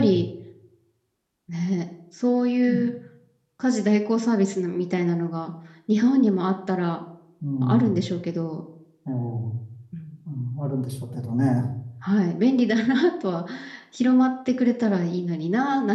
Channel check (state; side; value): identical; both; correlation 1.00